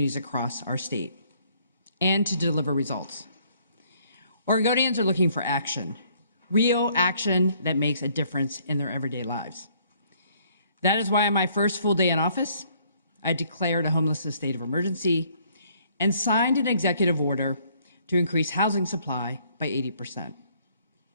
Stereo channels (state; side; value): inverted; both; correlation -0.64